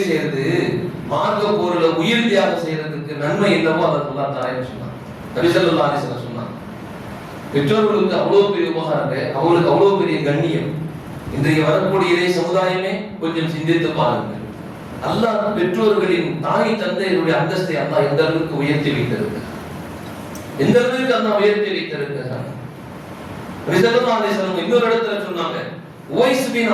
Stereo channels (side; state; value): both; identical; correlation 1.00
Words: செய்யறது, மார்க்க போர்ல உயிர் தியாகம் செய்யறதுக்கு நன்மை என்னவோ அதை அல்லாஹ் தரேன்னு சொன்னான். நபி ஸல்லல்லாஹு அலைஹி வஸல்லம் சொன்னாங்க. பெற்றோர்களுக்கு அவ்வளவு பெரிய உபகாரங்க, அவங்களுக்கு அவ்வளவு பெரிய கண்ணியம். இன்றைய வரக்கூடிய இறை சமுதாயமே கொஞ்சம் சிந்தித்து பாருங்கள். அல்லாஹ் பெற்றோர்களின் தாய் தந்தையருடைய அந்தஸ்தை அல்லாஹ் எந்த அளவுக்கு உயர்த்தி வைத்திருக்கிறார், எந்த அளவுக்கு அல்லாஹ் உயர்த்தி வைத்திருக்கிறார். நபி ஸல்லல்லாஹு அலைஹி வஸல்லம் இன்னொரு இடத்துல சொன்னாங்க, உவைஸ் பின்